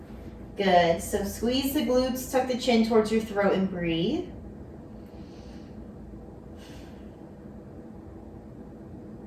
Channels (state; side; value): identical; both; correlation 1.00